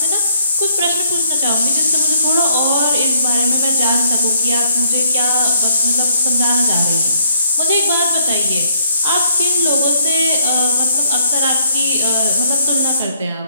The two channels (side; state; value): both; inverted; correlation -0.67